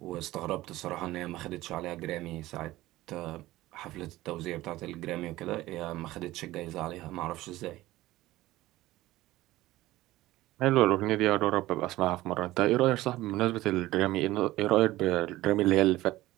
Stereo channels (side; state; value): left; quieter; 17.0 dB